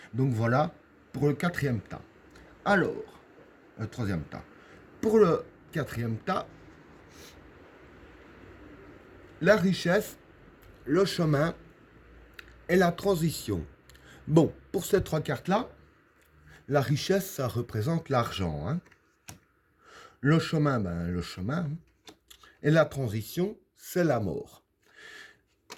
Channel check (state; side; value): identical; both; correlation 1.00